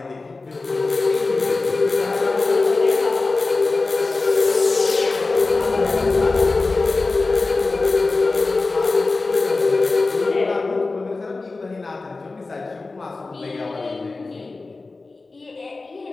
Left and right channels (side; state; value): right; quieter; 3.6 dB